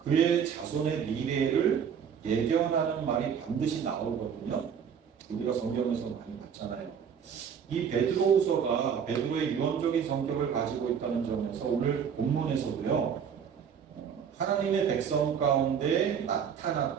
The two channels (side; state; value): left; quieter; 7.5 dB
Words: 자손의 미래를 예견하는 말이 반드시 나오거든요. 우리가 성경에서 많이 봤잖아요. 이 베드로후서가 베드로의 유언적인 성격을 가지고 있다는 점에서 오늘 본문에서도요, 하나님의 백성 가운데